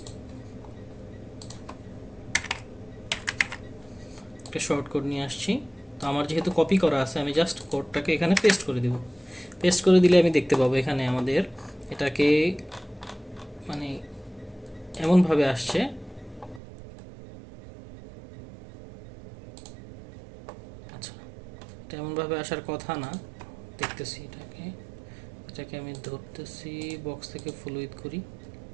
শর্ট কোড নিয়ে আসছি। তো আমার যেহেতু কপি করা আছে, আমি জাস্ট কোডটাকে এখানে পেস্ট করে দেব। পেস্ট করে দিলে আমি দেখতে পাবো এখানে আমাদের এটাকে মানে এমনভাবে আসছে, আচ্ছা এটা এমনভাবে আসার কথা না, দেখতেছি এটাকে আমি ধরতেছি, বক্স থেকে ফুল উইথ করি,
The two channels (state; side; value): drops out; left; at 16.6 s